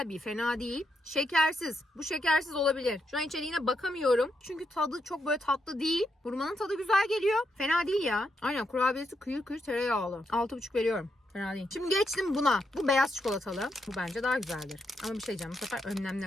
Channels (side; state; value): both; normal; correlation 0.81